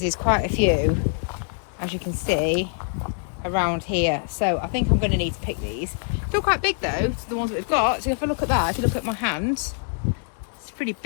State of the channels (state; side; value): silent; right; 58 dB below the other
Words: there's quite a few, as you can see, around here. So I think I'm going to need to pick these. Still quite big though, the ones that we've got. So if I look at that, if you look at my hands, it's pretty